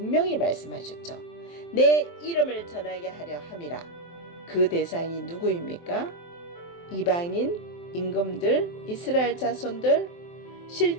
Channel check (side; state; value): right; late; 23 ms